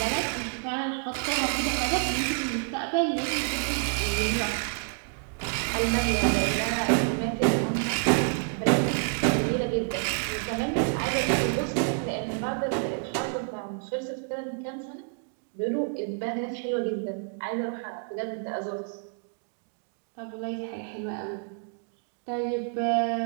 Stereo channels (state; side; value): silent; left; 56 dB below the other